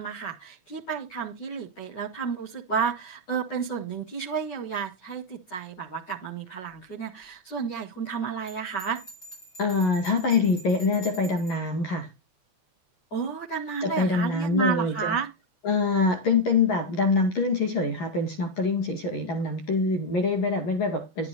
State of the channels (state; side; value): late; right; 11 ms